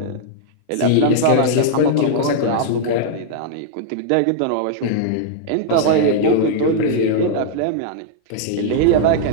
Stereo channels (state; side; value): different; both; correlation -0.01